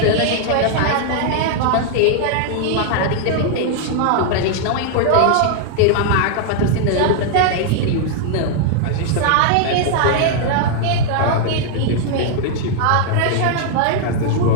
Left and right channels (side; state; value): both; different; correlation 0.00